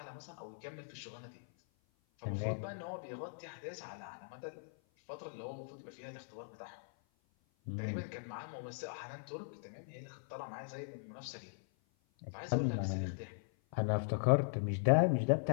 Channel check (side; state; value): right; silent; 51 dB below the other